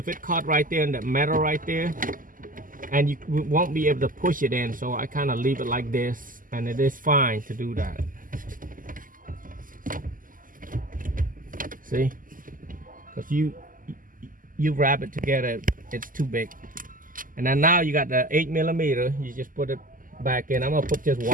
it caught right there in the metal right there, and you won't be able to push it in, so I kind of leave it like this, and it is fine to do that. See, because you wrap it together, it's too big. And then now you got the 8mm. You just put it back in. I'm gonna put just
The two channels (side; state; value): left; late; 0.40 ms